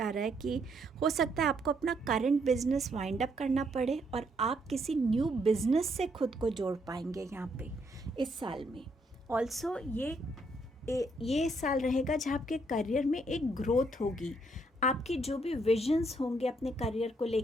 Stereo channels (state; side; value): normal; both; correlation 0.72